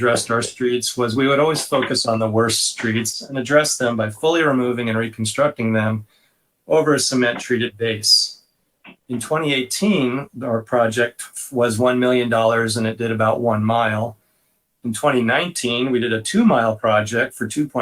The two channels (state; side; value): identical; both; correlation 1.00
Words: our streets was we would always focus on the worst streets and address them by fully removing and reconstructing them over a cement treated base. In 2018, our project was $1 million and it did about 1 mile. In 2019, we did a 2-mile project for